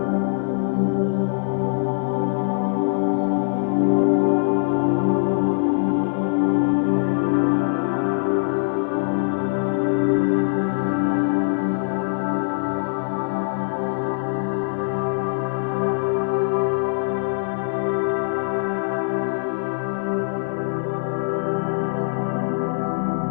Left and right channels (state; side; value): silent; right; digital silence